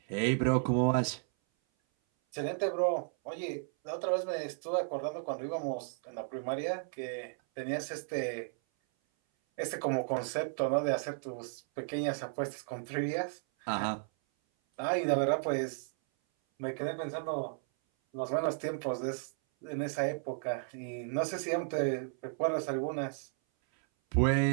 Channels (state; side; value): silent; left; 55 dB below the other